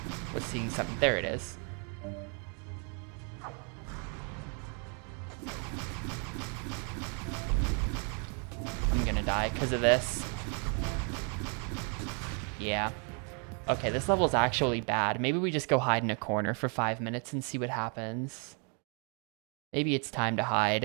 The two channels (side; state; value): left; quieter; 37.5 dB